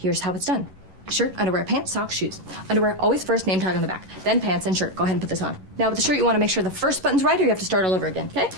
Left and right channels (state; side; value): late; left; 11 ms